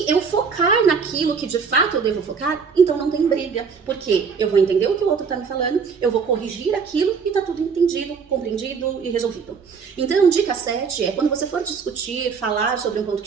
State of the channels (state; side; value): quieter; left; 5.8 dB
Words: eu focar naquilo que de fato eu devo focar, então não tem briga. Porque eu vou entender o que o outro tá me falando, eu vou corrigir aquilo e tá tudo entendido, compreendido e resolvido. Então, dica 7 é, quando você for discutir, falar sobre um ponto